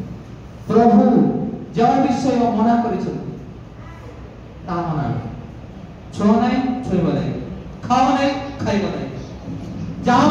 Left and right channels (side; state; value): both; identical; correlation 1.00